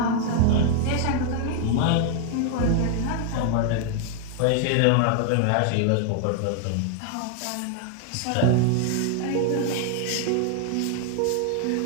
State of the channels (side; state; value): both; different; correlation 0.00